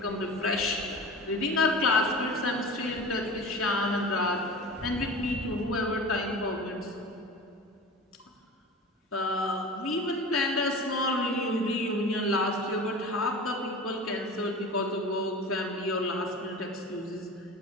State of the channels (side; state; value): both; normal; correlation 0.35